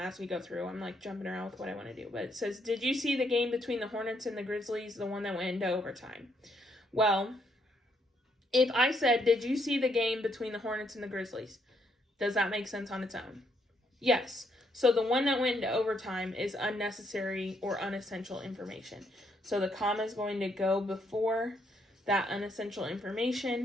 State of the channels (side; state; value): both; normal; correlation 0.73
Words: we go through. I'm like jumping around with what I want to do. But it says, did you see the game between the Hornets and the Grizzlies, the one that went into overtime? Well, if I said, did you see the game between the Hornets and the Grizzlies? Does that make sense on its own? Yes. So the one that went into overtime is unnecessary or unessential information. So the comma is going to go before that unessential